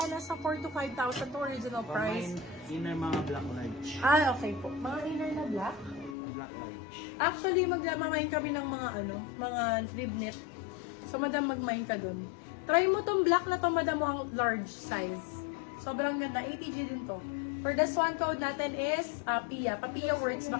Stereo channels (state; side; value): drops out; right; at 6.2 s